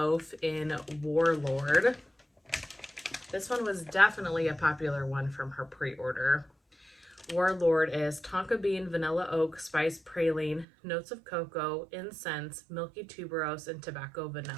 in Warlord. This one was definitely a popular one from her pre-order. Warlord is tonka bean, vanilla oak, spice praline, notes of cocoa, incense, milky tuberose, and tobacco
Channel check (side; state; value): left; drops out; at 10.7 s